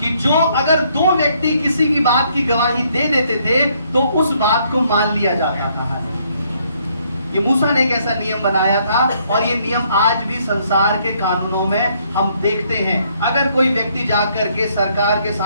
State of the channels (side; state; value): both; inverted; correlation -0.68